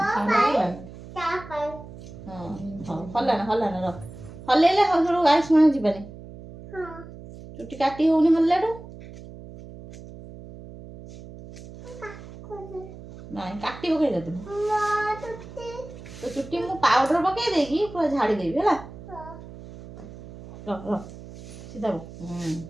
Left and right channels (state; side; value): noise; right; hum, 15 dB below the sound